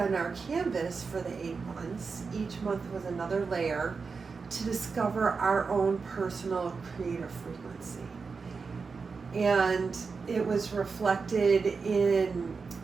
our canvas for the 8 months. Each month was another layer to discover our own personal creative frequency. And it was reflected in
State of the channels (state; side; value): quieter; left; 4.9 dB